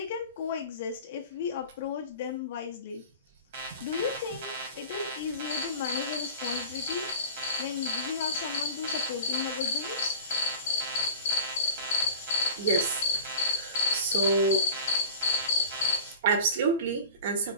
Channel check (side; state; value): both; inverted; correlation -0.37